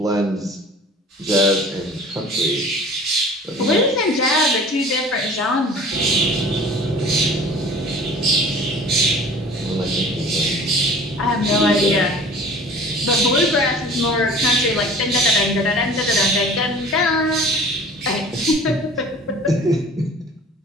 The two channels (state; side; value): normal; both; correlation 0.45